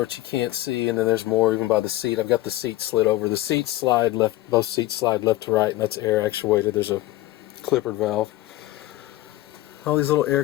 which you can't see, and then there's more even by the seat. I've got the seat slid over. The seats slide left, both seats slide left to right, and that's air actuated. There's a clippered valve. All these little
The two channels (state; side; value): quieter; right; 16.7 dB